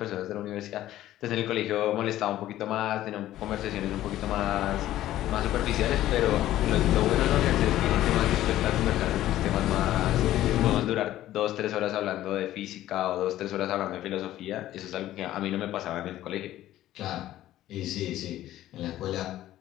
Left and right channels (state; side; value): quieter; right; 13.9 dB